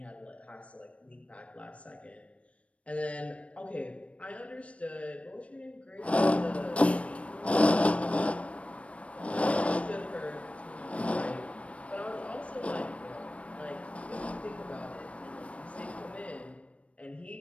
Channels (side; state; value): right; late; 0.063 ms